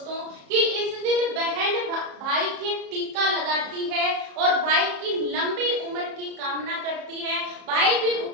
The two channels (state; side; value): late; left; 34 ms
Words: कि इस दिन बहन भाई के टीका लगाती है और भाई की लंबी उम्र की कामना करती है। भाई भी